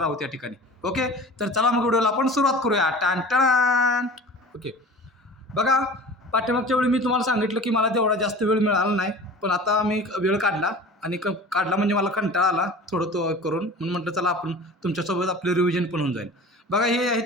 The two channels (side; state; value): both; normal; correlation 0.40